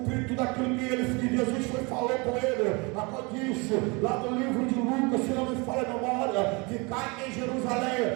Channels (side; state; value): left; quieter; 28.4 dB